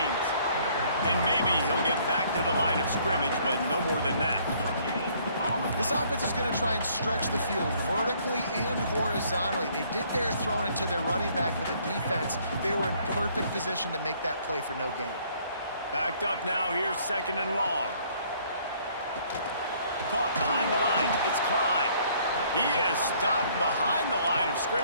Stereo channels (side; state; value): both; inverted; correlation -0.62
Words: And maybe he'll get back to the line of scrimmage, but no more than that. This offense is going to try and stretch the field vertically and horizontally. They did their throwing it to their running back, but the defense, they were in perfect position to make that play for no gain. Backed up now, here's 2nd and long. Caught behind the line, it's Klein. He is stopped behind the line of